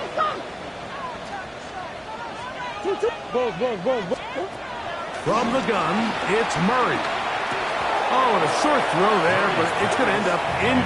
From the gun, it's Murray. Oh, and a short throw there, but it's going to end up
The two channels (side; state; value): both; identical; correlation 1.00